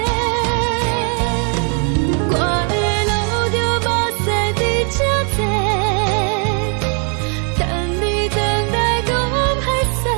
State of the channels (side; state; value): left; quieter; 39.4 dB